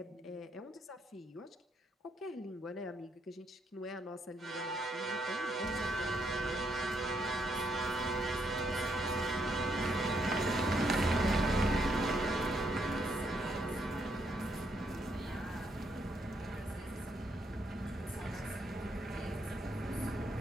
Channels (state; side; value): normal; both; correlation 0.75